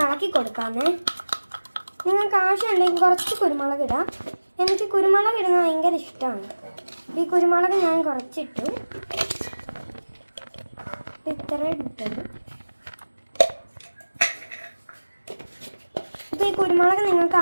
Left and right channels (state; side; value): inverted; both; correlation -1.00